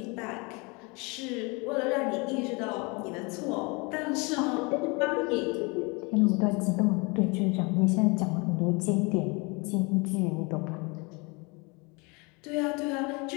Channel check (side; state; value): right; quieter; 28.8 dB